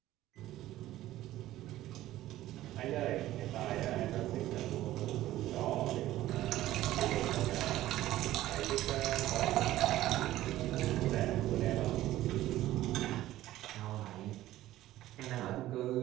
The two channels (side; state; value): left; quieter; 14.8 dB